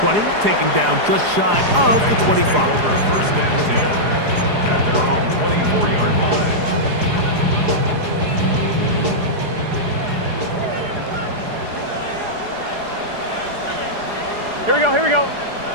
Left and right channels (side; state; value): left; late; 4.8 ms